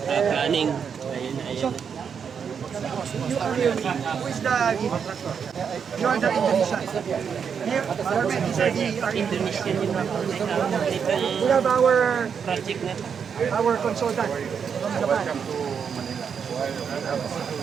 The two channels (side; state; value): left; quieter; 6.9 dB